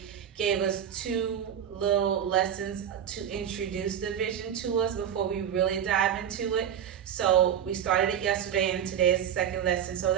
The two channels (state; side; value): quieter; left; 9.2 dB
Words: gave us two little lessons to introduce division to us before we really dive into it. So we started it yesterday and today is the second lesson. So